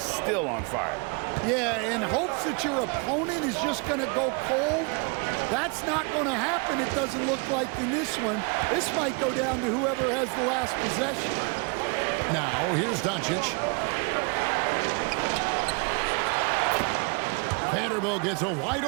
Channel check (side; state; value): left; quieter; 32.0 dB